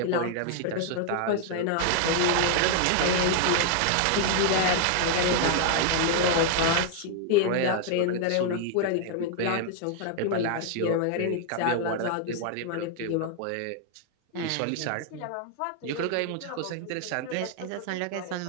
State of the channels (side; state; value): both; different; correlation 0.00